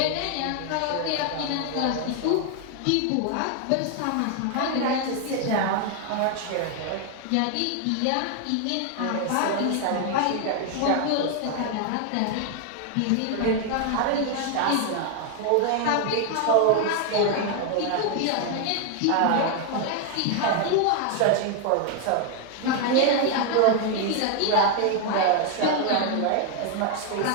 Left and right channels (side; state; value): both; different; correlation 0.00